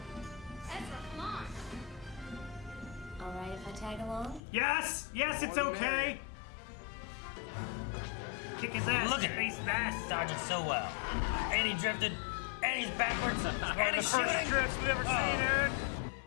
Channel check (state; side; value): drops out; right; at 4.4 s